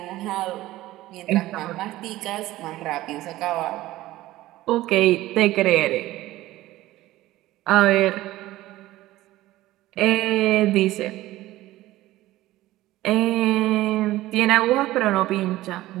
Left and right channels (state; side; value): quieter; left; 16.4 dB